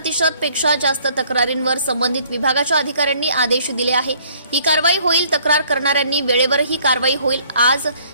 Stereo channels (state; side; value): inverted; both; correlation -0.60